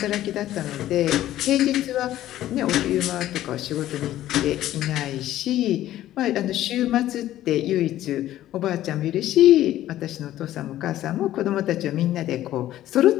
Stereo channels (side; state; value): right; quieter; 13.6 dB